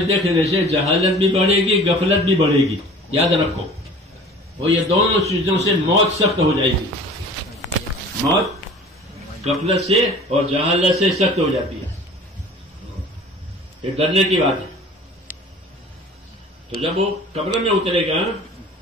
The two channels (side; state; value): both; normal; correlation 0.44